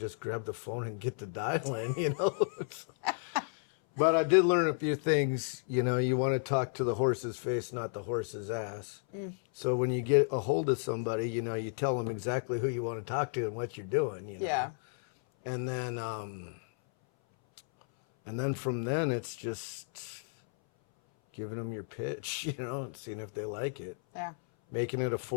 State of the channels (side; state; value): right; silent; 56 dB below the other